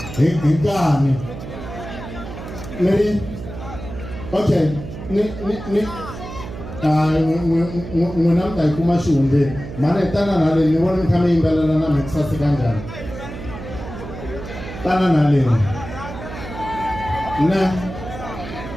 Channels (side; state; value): right; noise; hum, 11 dB below the sound